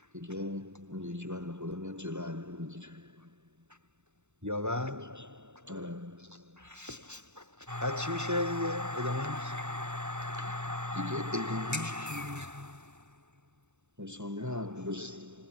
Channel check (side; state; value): left; late; 0.83 ms